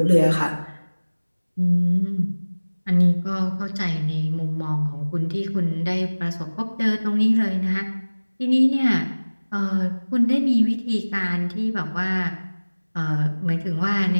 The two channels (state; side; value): inverted; both; correlation -1.00